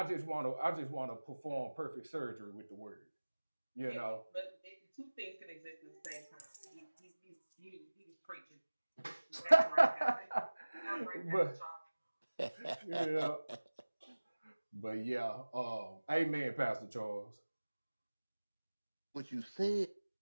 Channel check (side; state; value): both; inverted; correlation -1.00